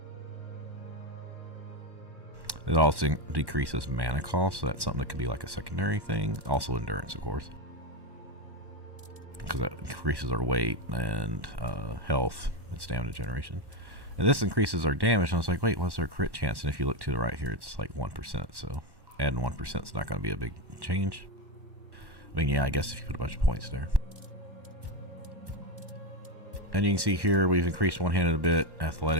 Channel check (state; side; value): late; left; 1.1 ms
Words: It also decreases mana cost, so that's something that could be like a secondary thing. Also endurance, of course, because that increases our weight and health and stamina generation. And this increases our damage, and I was like, wait, what's our crit chance? And if you look to the right here, it's like 1%, so adding 1% is not going to be a big change. I mean, yeah, I guess if you put a bunch of points there. And you can see here, we've increased one-handed a bit,